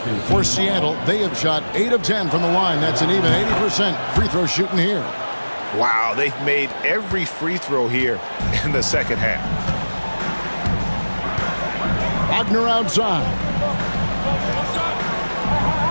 For Seattle, they have shot 8 of 10 from the line. That's an even 80% free throw shooting here. Wow, they've made every free throw here in the second half. Wagner outside.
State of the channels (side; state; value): both; inverted; correlation -1.00